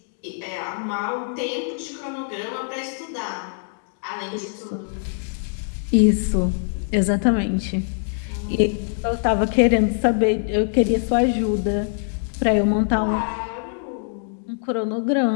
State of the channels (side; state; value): right; silent; digital silence